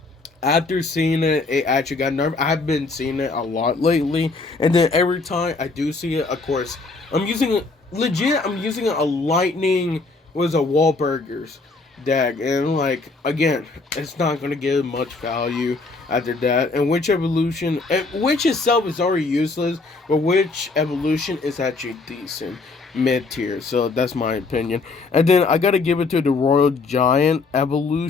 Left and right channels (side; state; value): right; quieter; 3.8 dB